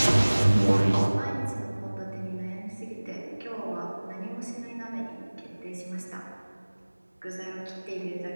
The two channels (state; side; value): inverted; both; correlation -1.00